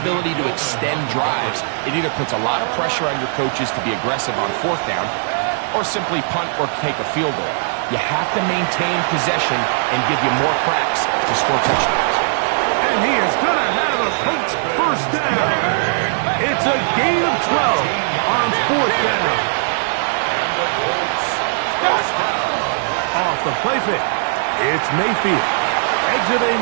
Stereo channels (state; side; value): silent; left; digital silence